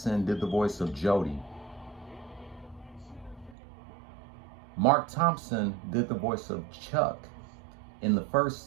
did the voice of Jody. Mark Thompson did the voice of Chuck in the first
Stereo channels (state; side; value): drops out; left; at 3.6 s